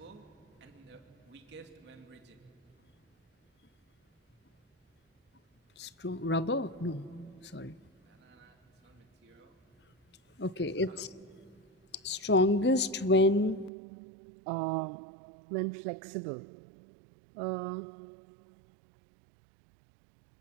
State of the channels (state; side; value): drops out; left; at 13.7 s